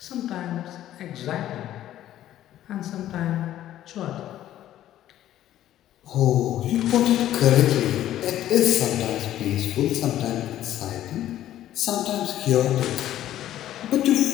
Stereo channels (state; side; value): quieter; right; 12.7 dB